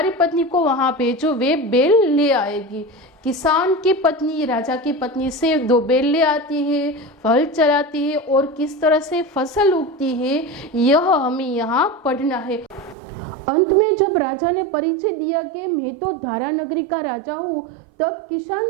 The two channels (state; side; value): drops out; left; at 13.0 s